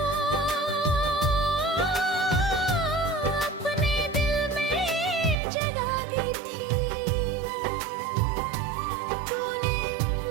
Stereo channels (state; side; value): drops out; left; at 5.4 s